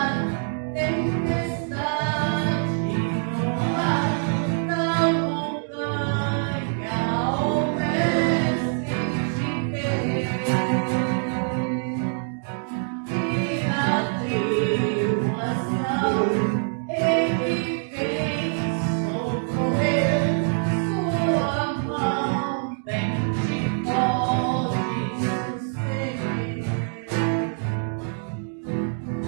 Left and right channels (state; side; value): silent; left; 62 dB below the other